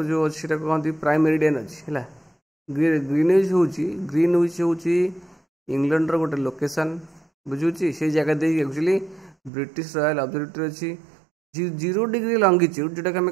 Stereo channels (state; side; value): drops out; left; at 9.5 s